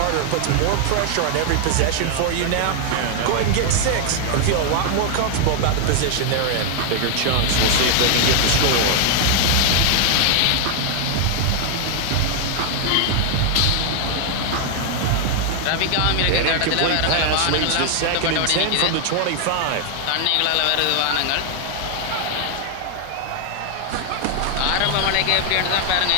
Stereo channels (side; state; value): both; different; correlation 0.00